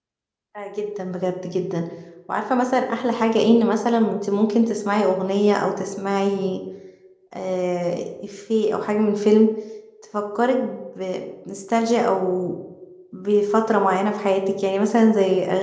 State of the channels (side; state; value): both; identical; correlation 1.00